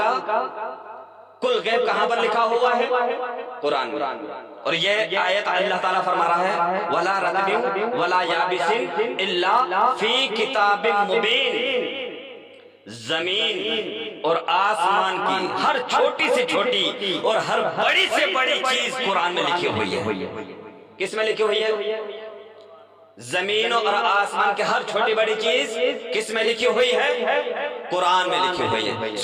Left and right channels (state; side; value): identical; both; correlation 1.00